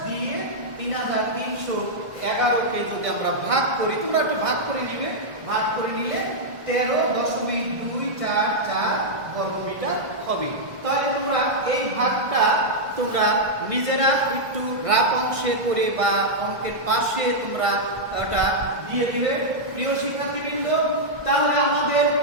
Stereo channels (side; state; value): left; late; 1.4 ms